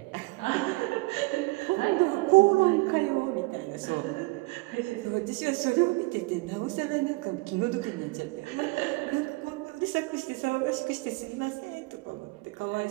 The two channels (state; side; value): quieter; left; 23.9 dB